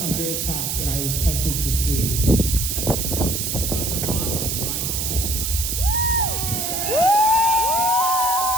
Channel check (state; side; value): noise; right; hiss, 1 dB below the sound